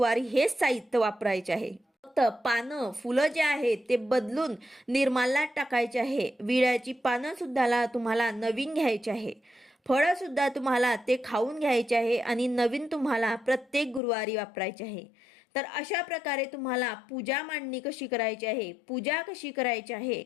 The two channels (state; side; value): drops out; right; at 14.0 s